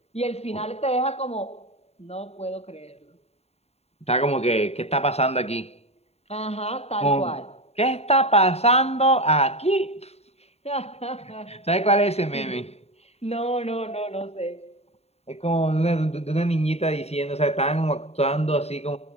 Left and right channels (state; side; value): late; right; 0.30 ms